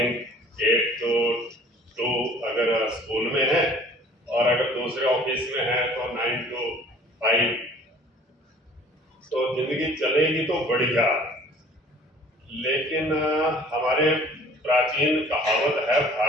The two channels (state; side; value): normal; both; correlation 0.51